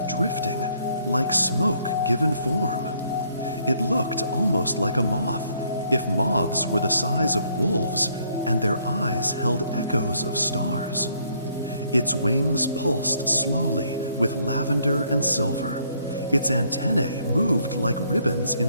drifting, like smoke given form. It looked almost like a moth, if moths were the size of wolves and their eyes held echoes of stars. Its wings pulsed slowly with lavender and silver. Its antennae moved like ribbons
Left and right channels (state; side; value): inverted; both; correlation -0.67